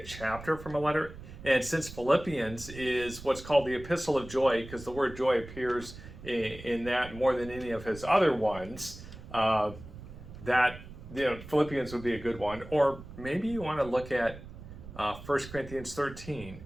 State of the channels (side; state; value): right; noise; rumble, 14 dB below the sound